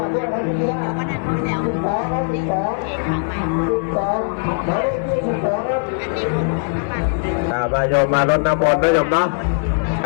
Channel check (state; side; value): silent; right; 66 dB below the other